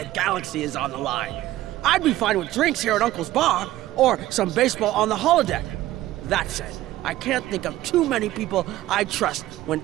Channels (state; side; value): quieter; left; 15.3 dB